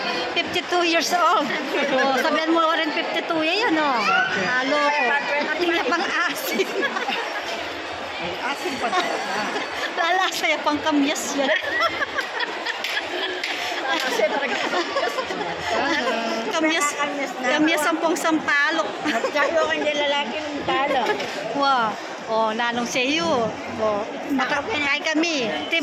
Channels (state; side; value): identical; both; correlation 1.00